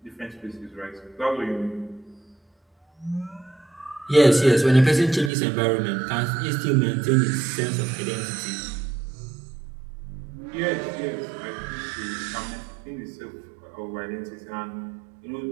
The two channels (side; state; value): left; drops out; at 5.3 s